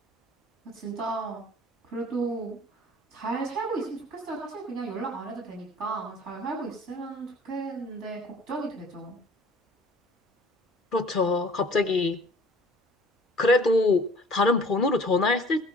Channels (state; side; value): normal; both; correlation 0.51